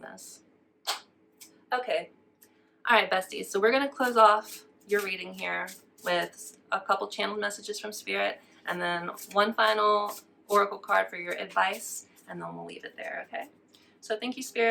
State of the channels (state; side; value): identical; both; correlation 1.00